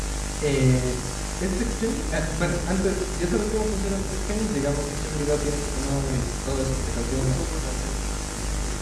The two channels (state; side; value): identical; both; correlation 1.00